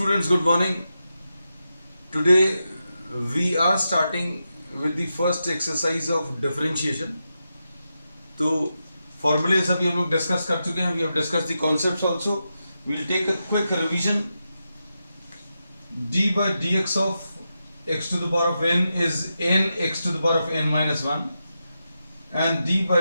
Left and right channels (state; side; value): inverted; both; correlation -0.88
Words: good morning. Today we are starting with the first exercise of differentiation. तो formulas अभी हम लोग discuss कर चुके हैं. We have discussed the concepts also. We'll take a quick revision. d by dx of x to the power of n is n x to the power of n minus 1 and d